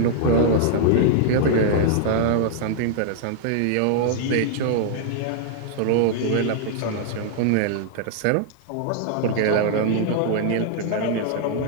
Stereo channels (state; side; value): different; both; correlation -0.01